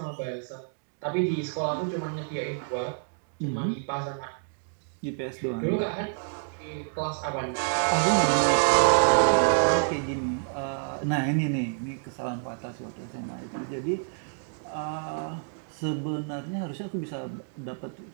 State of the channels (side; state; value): left; silent; digital silence